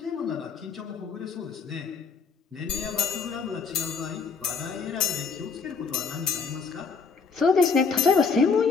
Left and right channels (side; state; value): right; quieter; 5.3 dB